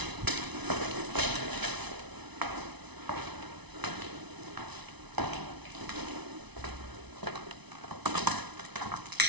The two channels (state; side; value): late; left; 0.99 ms